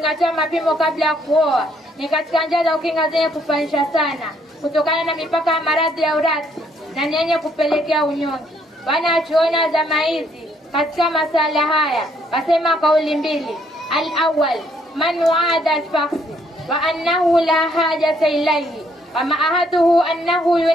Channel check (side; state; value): both; normal; correlation 0.68